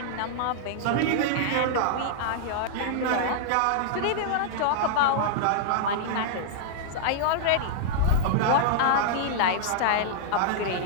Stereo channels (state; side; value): different; both; correlation -0.01